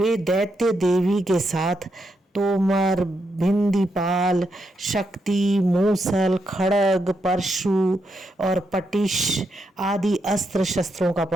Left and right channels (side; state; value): both; normal; correlation 0.82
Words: दैत्य देवी के साथ तोमर, भिंदीपाल, शक्ति, मूसल, खड़ग, परशु और पटिश आदि अस्त्र शस्त्रों का